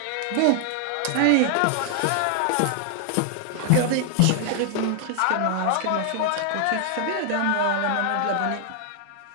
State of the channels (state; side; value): different; both; correlation 0.00